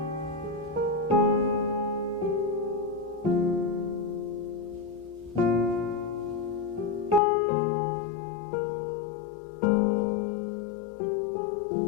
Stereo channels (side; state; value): right; drops out; at 7.2 s